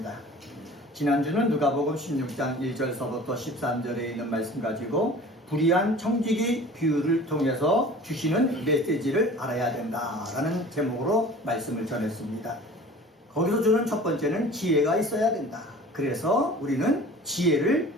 지난주는 누가복음 16장 1절서부터 13절에 있는 말씀 가지고 불의한 청지기 비유를 통해서 주시는 메시지를 알아야 된다라는 제목으로 말씀을 전했습니다. 거기서 주는 첫 번째는 지혜가 있어야 된다. 그래서 우리는 지혜를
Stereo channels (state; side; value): normal; both; correlation 0.43